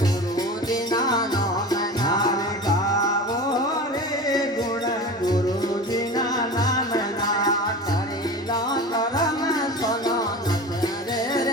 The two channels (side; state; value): both; normal; correlation 0.32